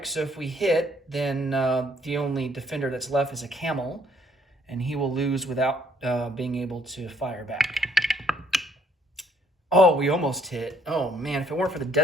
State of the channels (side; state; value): both; normal; correlation 0.65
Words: So if we hit, then the only defender that's left is a camel, and he will lose without being able to fire back. Oh, we almost hit. Oh man, if it weren't for the